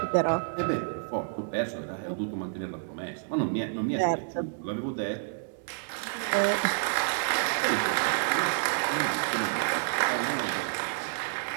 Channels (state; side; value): silent; left; 58 dB below the other